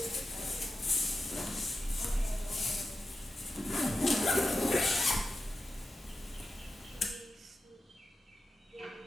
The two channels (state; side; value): normal; both; correlation 0.90